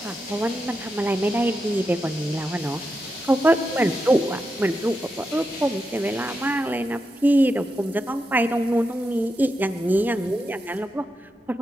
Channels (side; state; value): both; normal; correlation 0.87